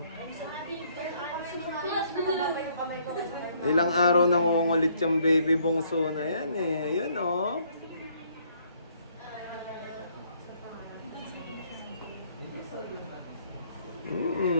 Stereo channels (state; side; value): inverted; both; correlation -0.66